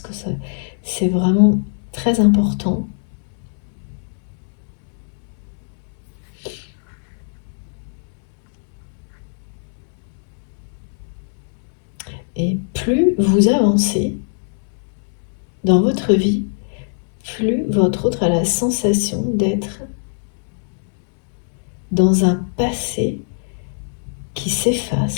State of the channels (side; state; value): right; silent; digital silence